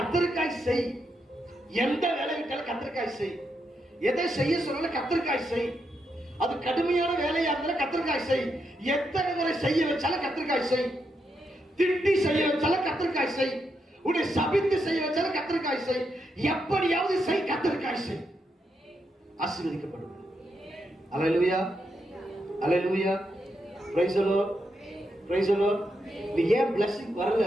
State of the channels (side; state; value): both; normal; correlation 0.82